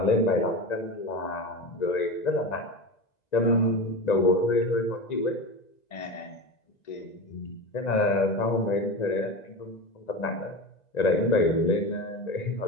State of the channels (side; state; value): right; late; 1.9 ms